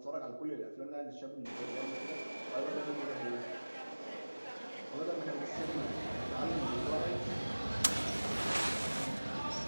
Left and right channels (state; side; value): inverted; both; correlation -1.00